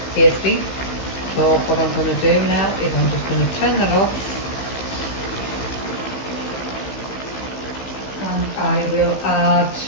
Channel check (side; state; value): right; late; 16 ms